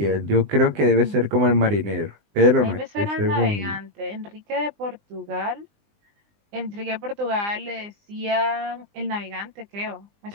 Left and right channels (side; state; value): left; late; 20 ms